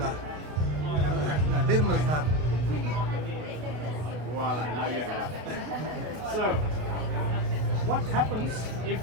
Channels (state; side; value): late; left; 33 ms